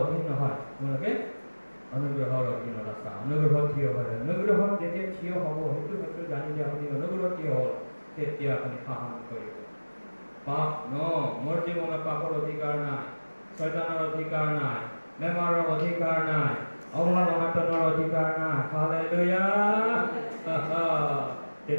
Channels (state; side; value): inverted; both; correlation -1.00